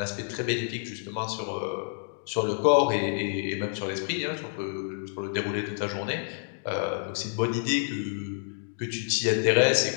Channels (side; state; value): right; silent; digital silence